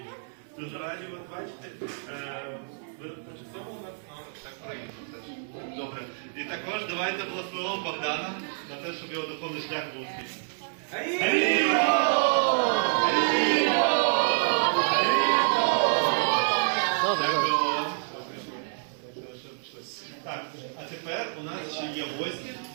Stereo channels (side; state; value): left; silent; digital silence